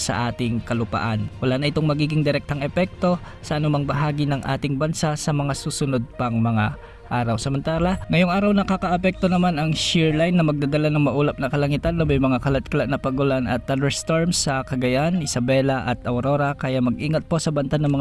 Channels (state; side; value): identical; both; correlation 1.00